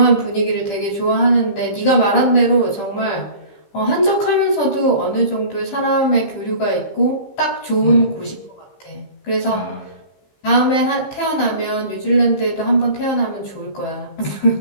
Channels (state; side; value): late; right; 15 ms